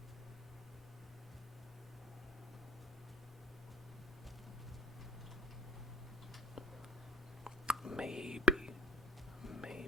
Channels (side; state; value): both; normal; correlation 0.59